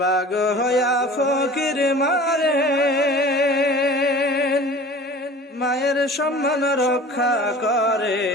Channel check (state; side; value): normal; both; correlation 0.42